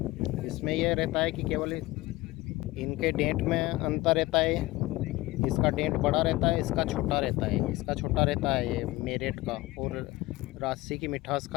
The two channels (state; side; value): quieter; right; 19.6 dB